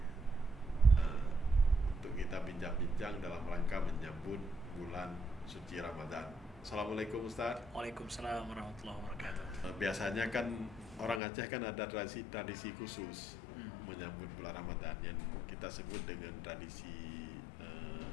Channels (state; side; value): drops out; right; at 11.2 s